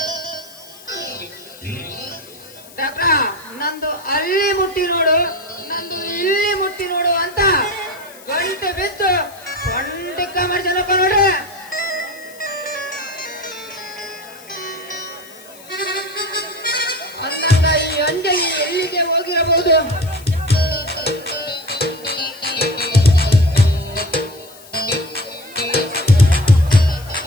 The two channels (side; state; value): left; noise; hiss, 21 dB below the sound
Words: ಡಾಕ್ಟ್ರ ನಂದು ಅಲ್ಲಿ ಮುಟ್ಟಿ ನೋಡು ನಂದು ಇಲ್ಲಿ ಮುಟ್ಟಿ ನೋಡು ಅಂತ ಗಂಟೆ ಬಿದ್ದು ಸೊಂಟಿಕ್ಕ ಮಾಡ್ಸನಪ್ಪ ನೋಡ್ರಿ. ಅಂದಾಗ ಈ ಅಂಜಲಿ ಎಲ್ಲಿಗೆ ಹೋಗಿರಬಹುದು?